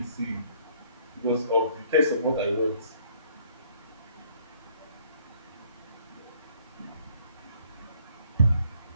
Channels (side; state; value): both; inverted; correlation -0.62